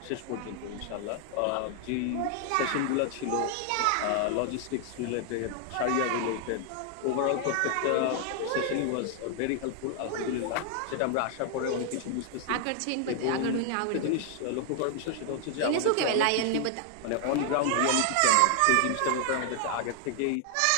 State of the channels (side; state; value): both; different; correlation 0.00